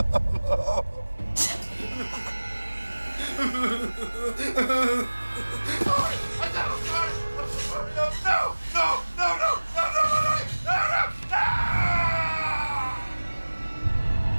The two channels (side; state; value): both; inverted; correlation -1.00